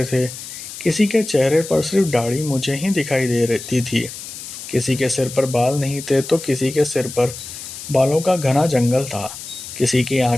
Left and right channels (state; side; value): noise; left; hiss, 11 dB below the sound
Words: थे, किसी के चेहरे पर सिर्फ दाढ़ी मुझे ही दिखाई दे रही थी, किसी के सिर पर बाल नहीं थे तो किसी के सिर पर बालों का घना जंगल था, किसी की